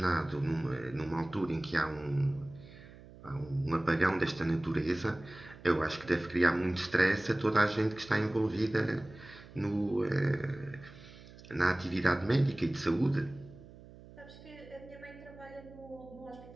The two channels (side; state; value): right; noise; hum, 19 dB below the sound